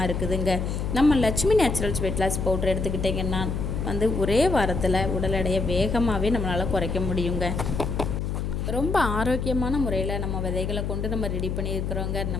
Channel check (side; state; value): left; noise; hum, 2 dB below the sound